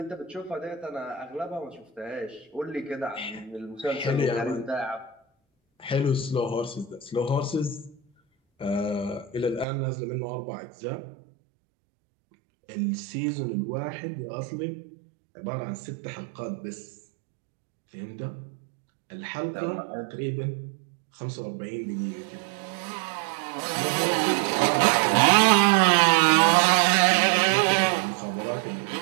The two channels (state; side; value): drops out; left; at 9.7 s